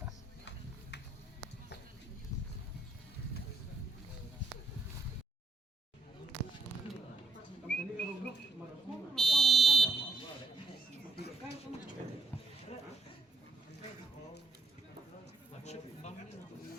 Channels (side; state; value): left; quieter; 3.4 dB